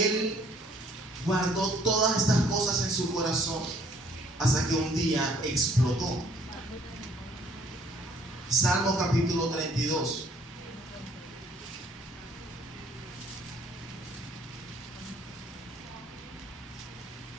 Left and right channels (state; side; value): normal; both; correlation 0.60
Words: guardó todas estas cosas en su corazón hasta que un día explotó. Salmo capítulo 32.